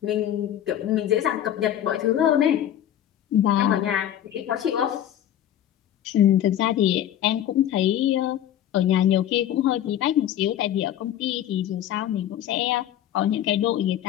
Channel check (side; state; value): right; quieter; 11.2 dB